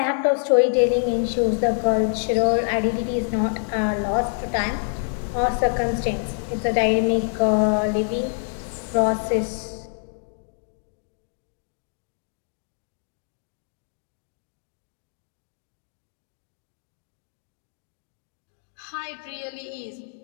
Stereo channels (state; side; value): silent; right; 61 dB below the other